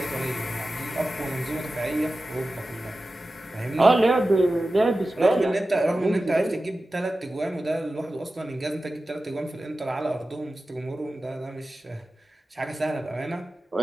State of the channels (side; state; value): both; normal; correlation 0.94